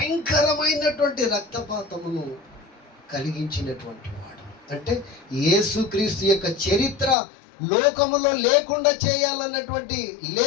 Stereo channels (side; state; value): right; drops out; at 7.2 s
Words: రక్తపాతమును కలిగించినటువంటి వాడు. అంటే యేసుక్రీస్తు యొక్క చరిత్ర లోకములో లేకుండా